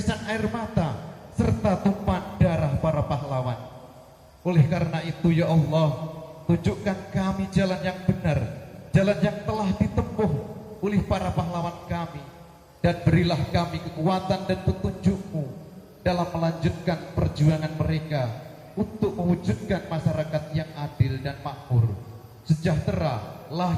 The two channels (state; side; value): identical; both; correlation 1.00